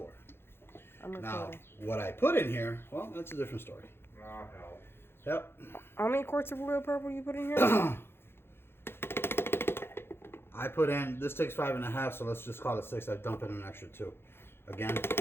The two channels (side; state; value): right; late; 0.11 ms